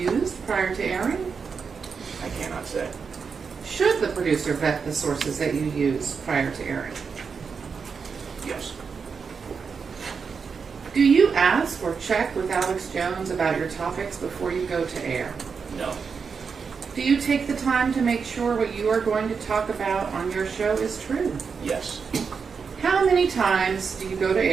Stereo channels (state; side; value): quieter; left; 5.7 dB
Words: prior to airing? I cannot say. Should the producer vet the sources that you use prior to airing? Yes. Do you ask or check with Alex Jones about your topics before you go to air? No. Do you take the time to make sure what you are going to talk about on your show is true? Yes. How many times do you go to